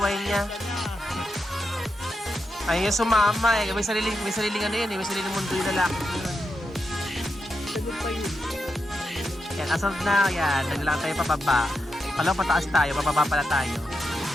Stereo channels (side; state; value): both; normal; correlation 0.86